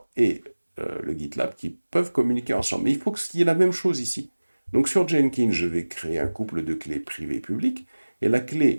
et le GitLab qui peuvent communiquer ensemble. Mais il faut qu'il y ait la même chose ici. Donc sur Jenkins, je vais créer un couple de clés privées-publiques, et la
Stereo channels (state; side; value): inverted; both; correlation -1.00